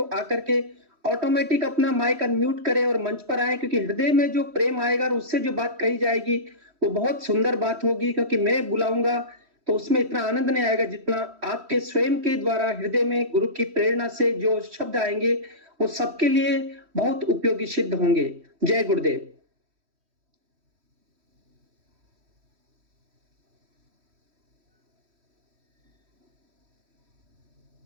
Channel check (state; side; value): late; left; 3.1 ms